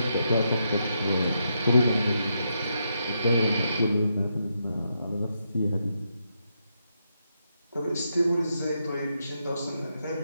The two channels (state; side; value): inverted; both; correlation -0.82